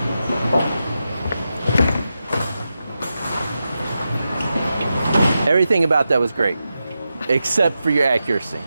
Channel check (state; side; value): inverted; both; correlation -0.90